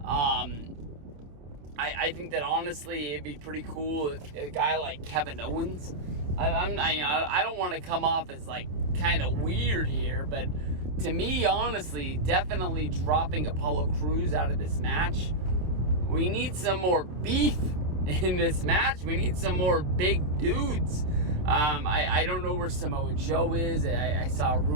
I think that honestly it'd be pretty cool if a guy like Kevin Owens. I don't want to come off as like kind of weird here, but to me, honestly, definitely dropping Apollo Crews out of this match. We need some more beef in this match. We need some more big dudes. I don't know where Samoa Joe is. I saw a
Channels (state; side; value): late; left; 27 ms